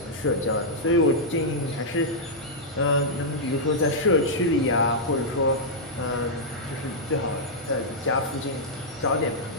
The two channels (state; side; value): normal; both; correlation -0.08